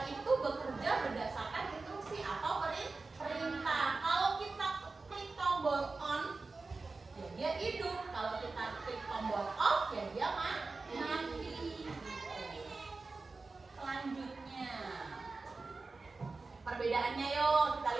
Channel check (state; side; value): quieter; left; 3.8 dB